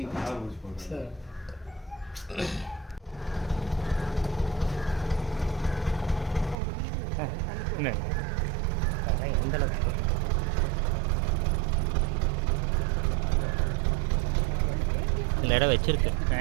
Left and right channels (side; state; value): left; drops out; at 6.6 s